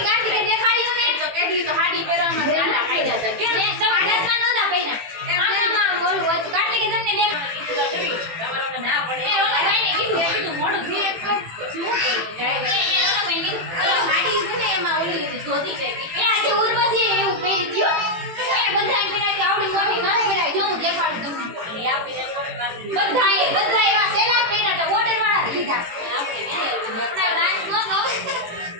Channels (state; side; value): late; left; 18 ms